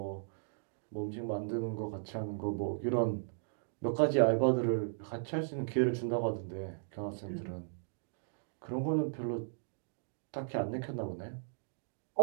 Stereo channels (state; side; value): silent; left; digital silence